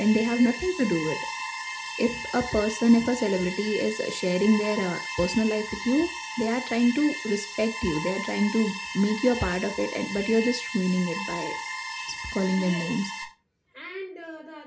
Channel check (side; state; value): both; identical; correlation 1.00